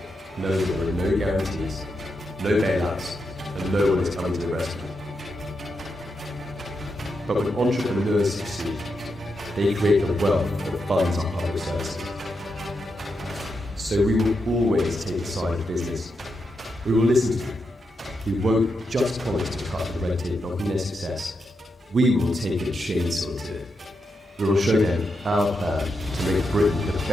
knowing that there are no guarantees, no bailouts, and no one is coming to the rescue. But when entrepreneurs succeed, they create the wealth that funds our public services. So we will always take the side of business. We will listen to them. We won't just promise to cut the red tape blocking their success. We will take a chainsaw to it. We will show them our plan to make Britain the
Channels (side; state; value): both; normal; correlation 0.85